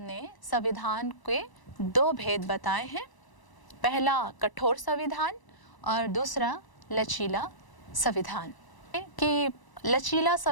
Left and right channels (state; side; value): late; right; 1.0 ms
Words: संविधान के दो भेद बताए हैं, पहला कठोर संविधान और दूसरा लचीला संविधान। कि लचीला